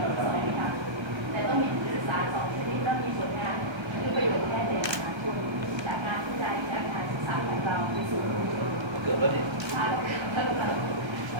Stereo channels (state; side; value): late; left; 1.2 ms